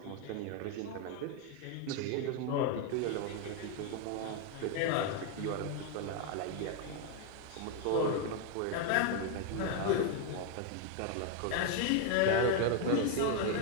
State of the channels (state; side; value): different; both; correlation 0.01